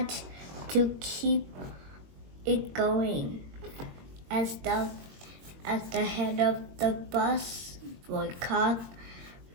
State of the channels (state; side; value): late; left; 22 ms